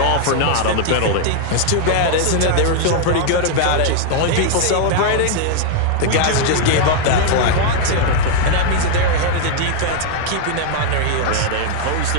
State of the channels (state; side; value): different; both; correlation 0.00